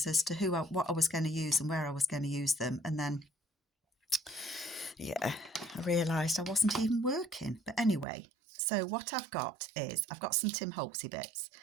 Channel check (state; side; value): drops out; left; at 8.1 s